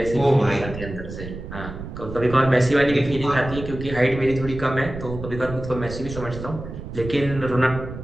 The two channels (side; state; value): right; noise; rumble, 10 dB below the sound